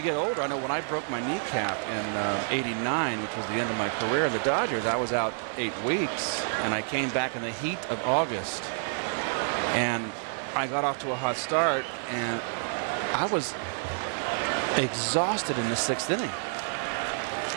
get older, I know when I broke my kneecap in '89, which was the end of my career in the Dodgers, I was out 8 weeks, and I came back in the heat of August, and I got off to a hot start, and I was exhausted in the 6th inning.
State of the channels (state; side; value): silent; left; digital silence